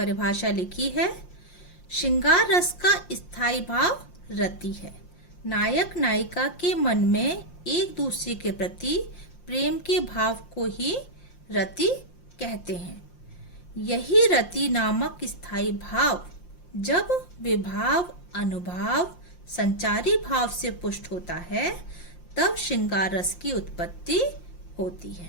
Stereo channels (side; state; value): right; late; 5.7 ms